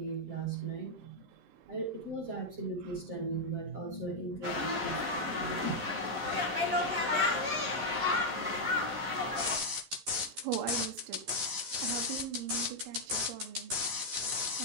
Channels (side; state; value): left; late; 13 ms